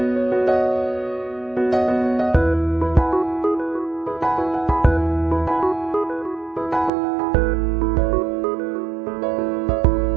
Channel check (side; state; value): left; drops out; at 6.9 s